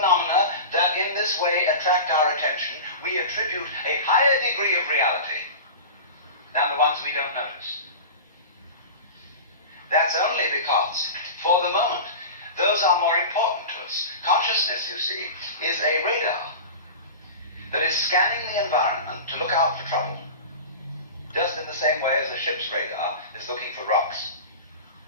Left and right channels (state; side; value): inverted; both; correlation -0.31